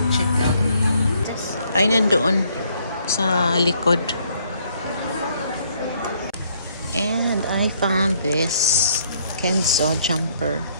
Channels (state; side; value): inverted; both; correlation -0.67